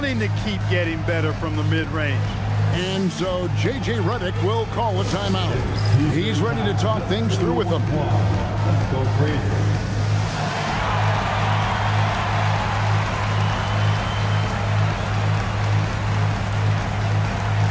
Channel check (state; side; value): identical; both; correlation 1.00